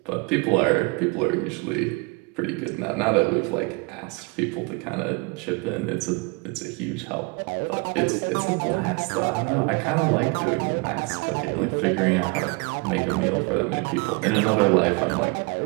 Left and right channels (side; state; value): left; quieter; 28.2 dB